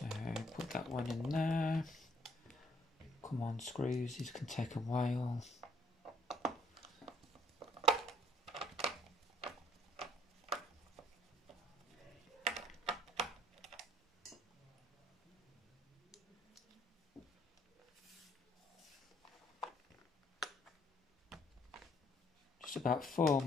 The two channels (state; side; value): normal; both; correlation 0.63